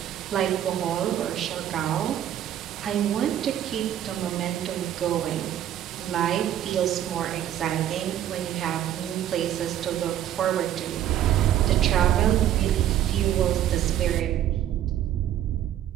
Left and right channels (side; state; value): left; quieter; 11.3 dB